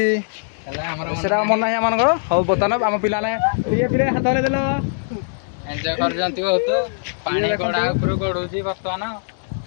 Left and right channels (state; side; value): silent; right; digital silence